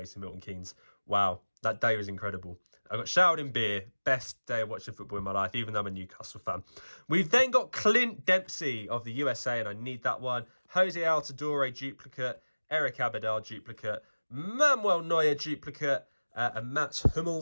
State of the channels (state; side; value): inverted; both; correlation -1.00